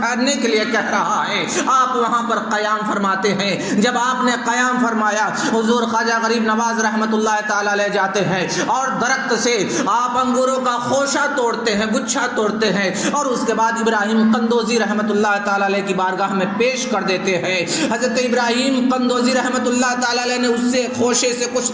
کے لیے کہہ رہا ہے، آپ وہاں پر قیام فرماتے ہیں۔ جب آپ نے قیام فرمایا، حضور خواجہ غریب نواز رحمت اللہ تعالی علیہ جاتے ہیں اور درخت سے آپ انگوروں کا خوشہ توڑتے ہیں، گچھا توڑتے ہیں، اور اس کے بعد ابراہیم قندوزی رحمت اللہ تعالی علیہ کی بارگاہ میں پیش کر دیتے ہیں۔ حضرت ابراہیم قندوزی رحمت اللہ تعالی علیہ نے اس سے خوشے سے کچھ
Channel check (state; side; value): identical; both; correlation 1.00